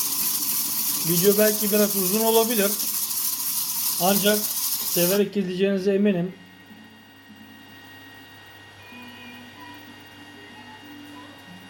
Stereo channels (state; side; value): identical; both; correlation 1.00